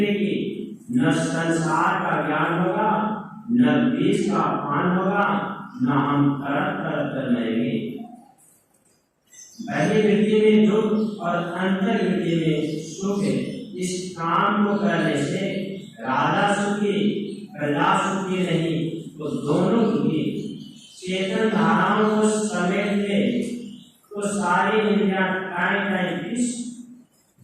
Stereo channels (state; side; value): identical; both; correlation 1.00